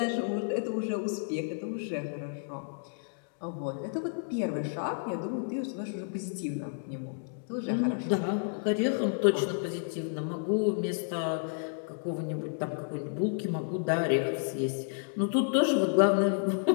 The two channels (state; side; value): silent; right; digital silence